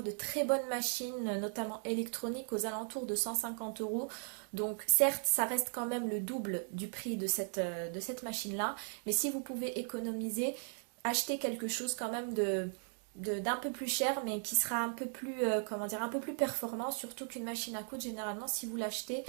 de très bonnes machines, notamment électroniques, aux alentours de 150 €. Donc certes, ça reste quand même le double du prix de cette machine-là. Mais si vous pouvez économiser, achetez quelque chose quand même d'un peu plus cher, mais qui sera un peu plus, comment dire, un peu plus performant, surtout qu'une machine à coudre, généralement, si vous l'achetez,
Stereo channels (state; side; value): silent; left; 53 dB below the other